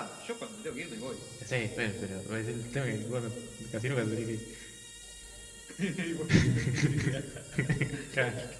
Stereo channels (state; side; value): identical; both; correlation 1.00